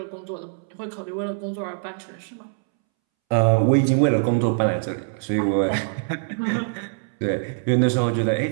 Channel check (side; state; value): left; silent; 63 dB below the other